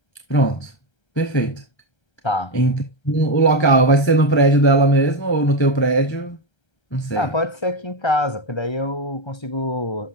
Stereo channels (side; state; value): right; late; 1.3 ms